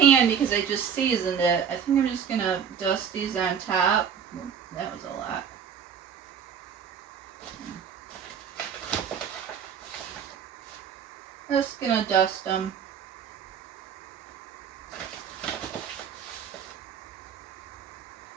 pan because I just seasoned it. I think I'm just going to dust these on top. Ooh, that was a lot. Just going to dust them.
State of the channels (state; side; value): quieter; left; 7.5 dB